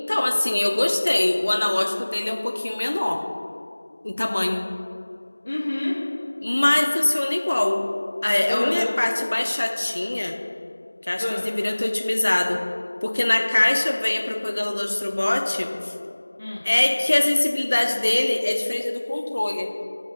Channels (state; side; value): inverted; both; correlation -1.00